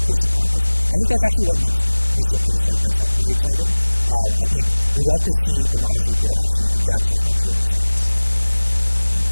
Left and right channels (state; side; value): inverted; both; correlation -1.00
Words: pace of progress. I think that's actually what makes researchers like myself very excited. I think we love to see the models we build actually advance the frontier of science.